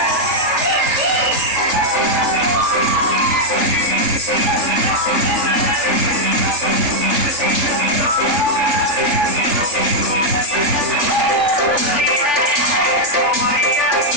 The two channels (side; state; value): left; late; 3.4 ms